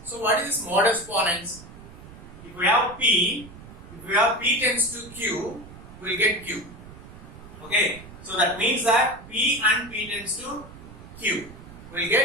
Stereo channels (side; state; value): right; noise; rumble, 17 dB below the sound